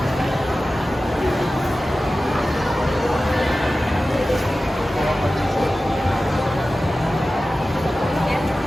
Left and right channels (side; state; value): both; normal; correlation 0.95